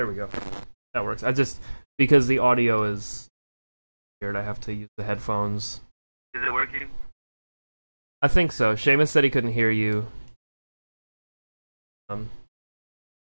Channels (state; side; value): inverted; both; correlation -1.00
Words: we go. That works. Because the audio is weird, I have to use the headphones. Is it working? I think so. Seamus said he couldn't hear you.